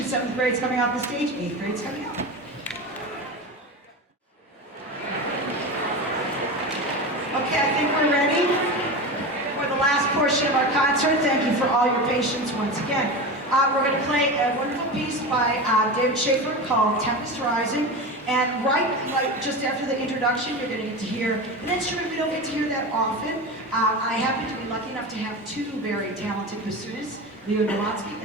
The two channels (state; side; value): normal; both; correlation 0.25